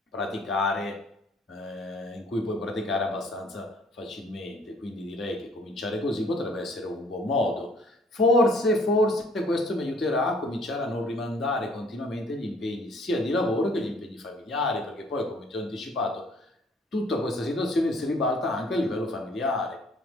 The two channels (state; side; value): normal; both; correlation 0.59